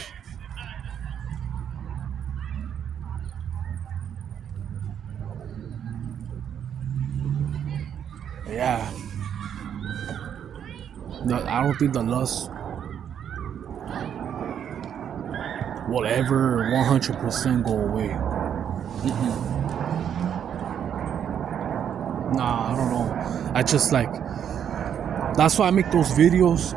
Yeah. I don't think the lust will ever 100% go away. Nah, I don't know. I just like, that's why I make those videos,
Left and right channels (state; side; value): quieter; left; 8.8 dB